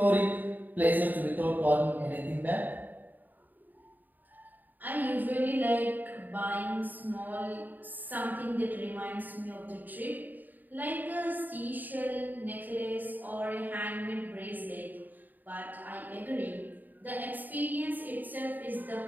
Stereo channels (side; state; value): left; late; 0.086 ms